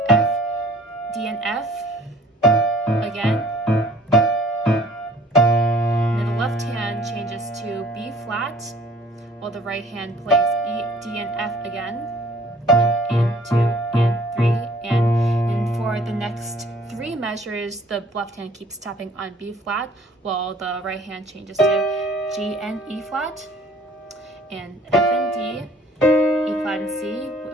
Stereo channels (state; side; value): normal; both; correlation 0.55